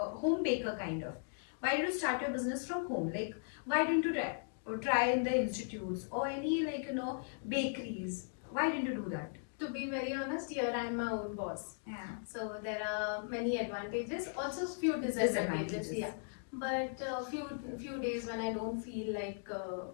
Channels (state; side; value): silent; right; digital silence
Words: baker kind of? Why did you start your business from home? Like, why didn't you try in the institutes or any bakeries? Why didn't you do that? To be very honest, here I am my own boss. Yeah. So there are many advantages, also few disadvantages. Yeah. But few days when I don't feel like